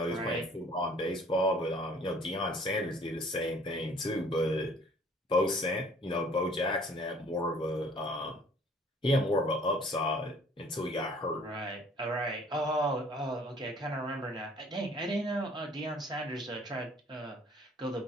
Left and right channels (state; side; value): normal; both; correlation 0.55